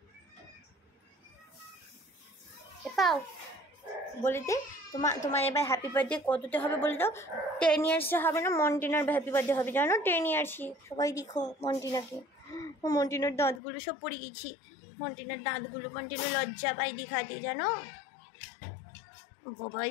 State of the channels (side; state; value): right; drops out; at 13.6 s